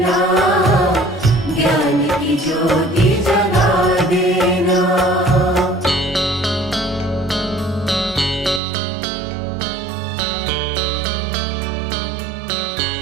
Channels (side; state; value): left; drops out; at 8.6 s